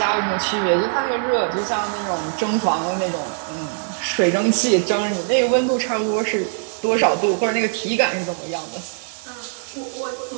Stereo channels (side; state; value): left; silent; 65 dB below the other